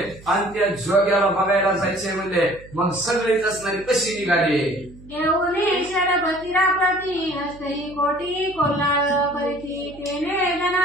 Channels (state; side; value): noise; right; hum, 20 dB below the sound